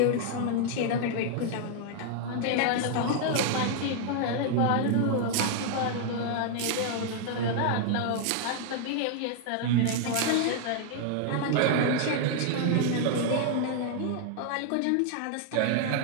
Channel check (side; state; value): both; different; correlation 0.00